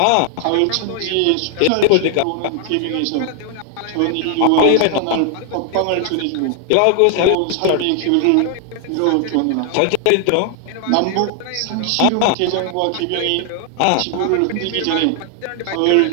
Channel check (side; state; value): both; different; correlation 0.00